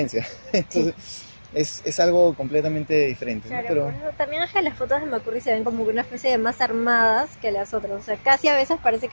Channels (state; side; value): inverted; both; correlation -1.00